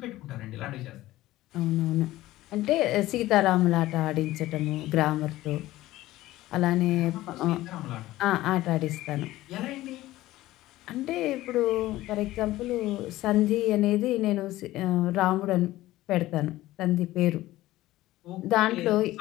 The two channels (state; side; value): quieter; right; 16.3 dB